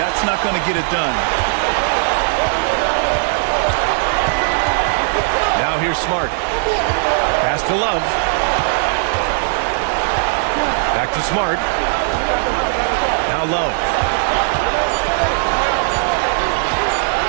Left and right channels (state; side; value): silent; left; 65 dB below the other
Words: not going to get it done. Now here's Smart. Pass to Love. Back to Smart. Now Love.